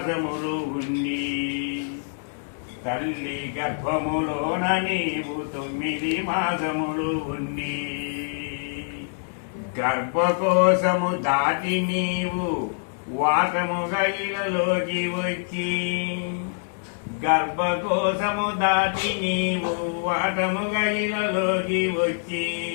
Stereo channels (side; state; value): right; silent; 62 dB below the other